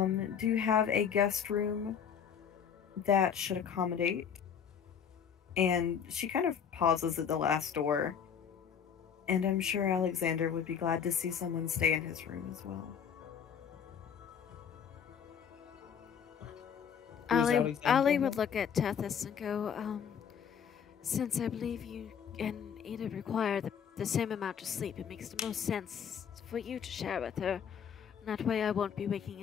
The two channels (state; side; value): quieter; right; 7.7 dB